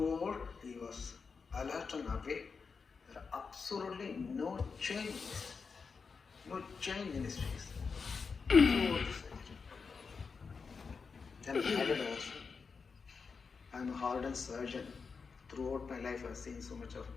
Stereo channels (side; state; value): right; quieter; 5.2 dB